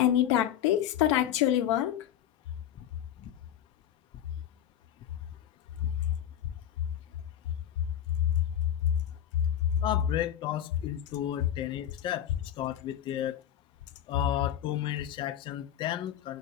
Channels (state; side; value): quieter; right; 10.7 dB